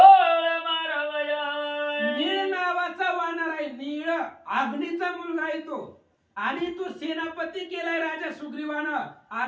मारवया. नीळ नावाचा वानर आहे. नीळ अग्नीचा मुलगा आहे तो आणि तो सेनापती केलाय राजा सुग्रीवानं.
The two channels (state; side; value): identical; both; correlation 1.00